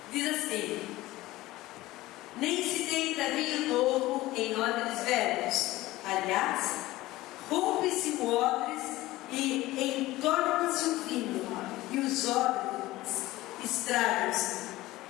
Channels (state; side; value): quieter; right; 17.7 dB